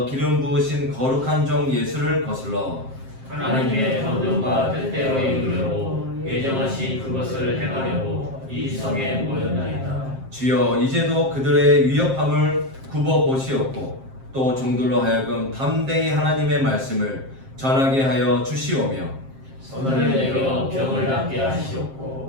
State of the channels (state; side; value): late; left; 7.5 ms